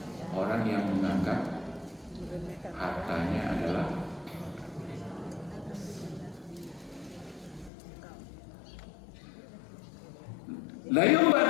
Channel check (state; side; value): drops out; right; at 7.7 s